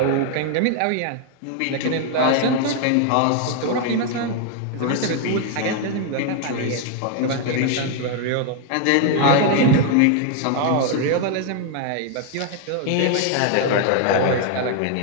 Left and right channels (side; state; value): both; different; correlation 0.00